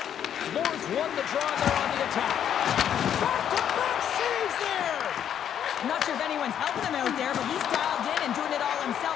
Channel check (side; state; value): right; quieter; 9.4 dB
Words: Moore's won the draw there on the attack. Back-to-back saves there! I'm not sure if anyone's helping him out there, but he's dialed in and doing it all himself,